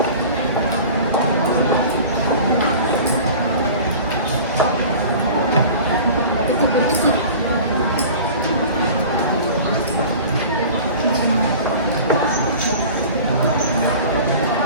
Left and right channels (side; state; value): both; inverted; correlation -0.40